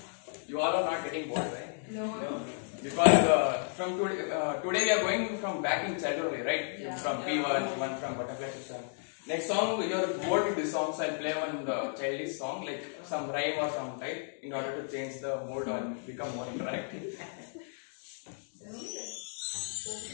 You all are not getting bored, right? No. Because from today we are going from back in childhood, right? Yeah. From P1, one from butterfly system. Next song, you are bored with this song, so I'll play one childish song, like some rhyme or some type, in order to change the mood and become more interactive.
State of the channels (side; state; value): right; silent; 56 dB below the other